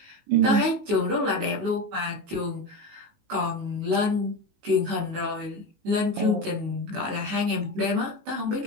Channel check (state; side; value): late; left; 19 ms